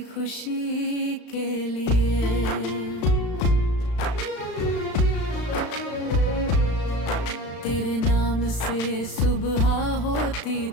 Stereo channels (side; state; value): right; late; 35 ms